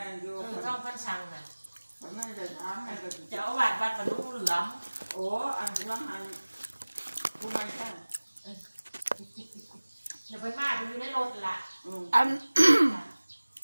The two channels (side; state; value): both; inverted; correlation -1.00